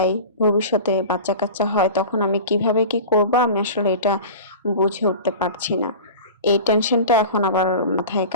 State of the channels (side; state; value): both; inverted; correlation -0.34